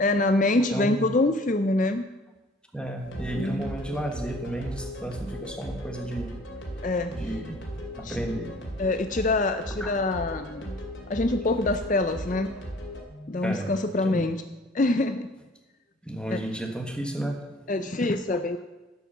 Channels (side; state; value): both; normal; correlation 0.51